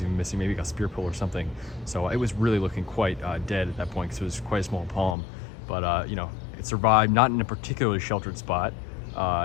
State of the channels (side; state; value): right; drops out; at 5.2 s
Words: even missing, maybe got spear pull or something. So it was really looking quite dead at that point because it was quite a small palm. But you know, it survived, not in a particularly sheltered spot,